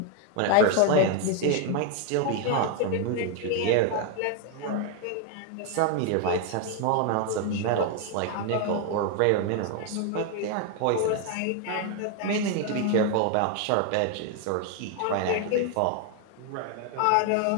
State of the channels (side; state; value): both; different; correlation 0.01